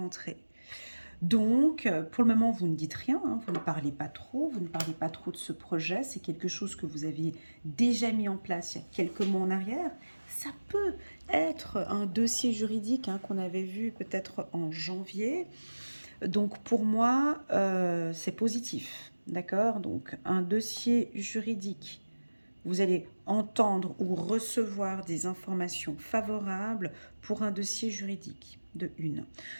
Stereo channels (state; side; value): inverted; both; correlation -1.00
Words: Donc, pour le moment, vous ne dites rien, hein, vous ne parlez pas trop, vous ne parlez pas trop de ce projet. C'est quelque chose que vous aviez déjà mis en place il y a quelques mois en arrière. Ça peut être un dossier juridique, hein, qu'on avait vu peut-être en janvier. Donc, pour moi, c'est positif, d'accord? Donc, un dossier juridique, vous allez entendre ou recevoir des informations favorables pour un dossier juridique, de une.